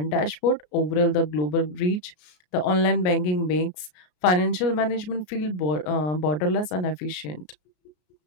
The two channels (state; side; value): late; right; 33 ms